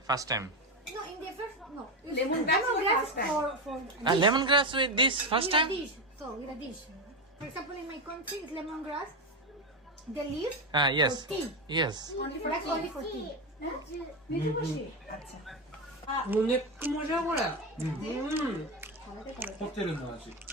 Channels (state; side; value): normal; both; correlation 0.13